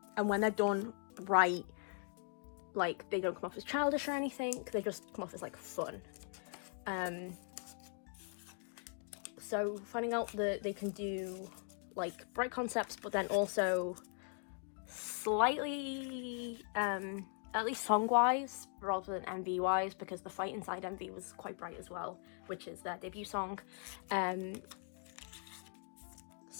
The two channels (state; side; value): silent; right; 51 dB below the other